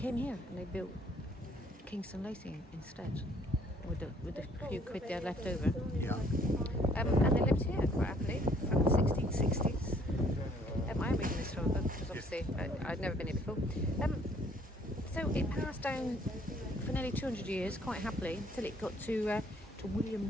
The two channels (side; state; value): both; normal; correlation 0.61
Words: here and they built Kingston Lacy instead, with the few quid they had left over. Yeah. And they lived here quite happily from the 1660s. I'm reading this from a book because obviously I'd never been here before. So it passed down for nearly 200 years quite happily until it got to